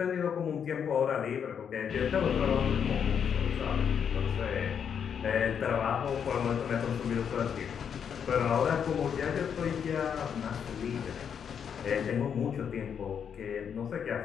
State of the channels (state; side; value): quieter; right; 7.6 dB